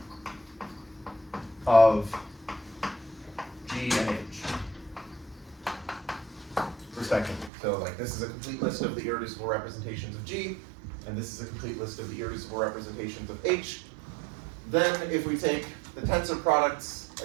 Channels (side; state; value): left; drops out; at 7.5 s